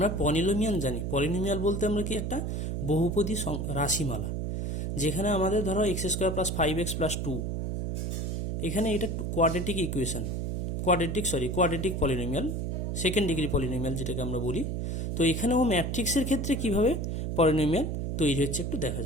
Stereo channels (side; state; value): right; noise; hum, 2 dB below the sound